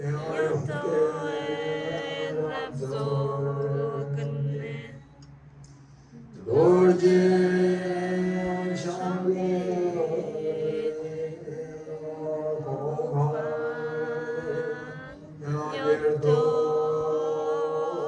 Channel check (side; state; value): both; identical; correlation 1.00